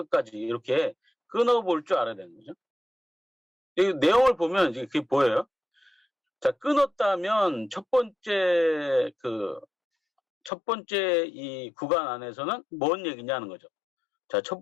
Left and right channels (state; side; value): drops out; right; at 10.5 s